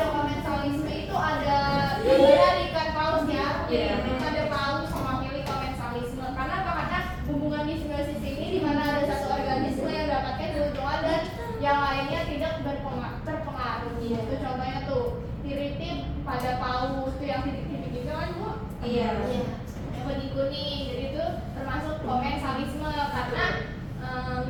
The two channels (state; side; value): identical; both; correlation 1.00